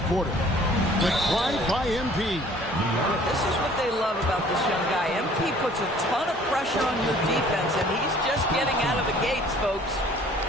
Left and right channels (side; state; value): both; normal; correlation 0.54